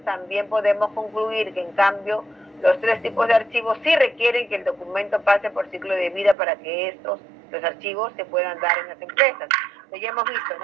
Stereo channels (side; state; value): left; drops out; at 6.4 s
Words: también podemos concluir que, en cambio, los 3 tipos de archivos sí requieren que el documento pase por ciclo de vida para que los archivos se puedan dar en las empresas. Pues ya hemos visto, ¿no?,